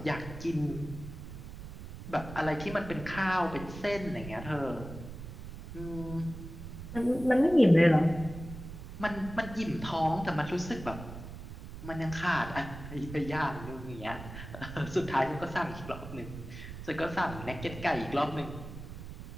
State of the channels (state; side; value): noise; right; rumble, 11 dB below the sound